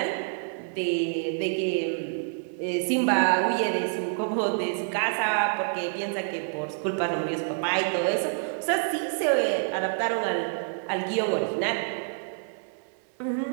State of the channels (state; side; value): silent; left; digital silence